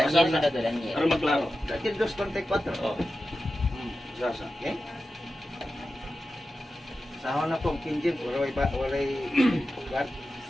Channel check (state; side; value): normal; both; correlation 0.92